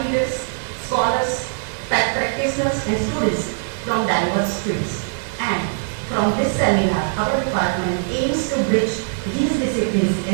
leaders, scholars, practitioners and students from diverse fields. And from this seminar, our department aims to bridge these disciplines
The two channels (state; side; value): silent; left; 65 dB below the other